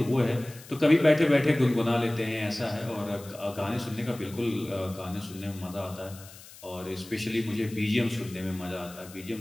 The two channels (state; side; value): noise; left; hiss, 19 dB below the sound